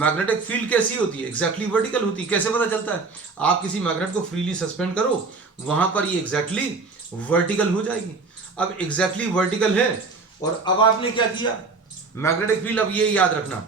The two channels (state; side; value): quieter; left; 4.2 dB